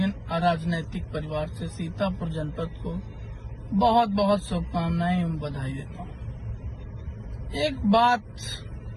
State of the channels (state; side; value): identical; both; correlation 1.00